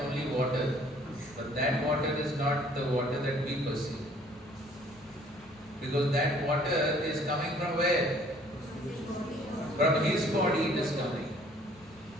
water, but that water is not the water that we perceive. Because that water is coming from where? From his body it is coming.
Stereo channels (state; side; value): normal; both; correlation 0.58